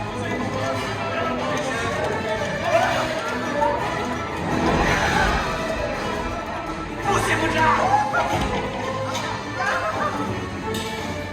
Poussez-vous de là!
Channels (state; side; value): identical; both; correlation 1.00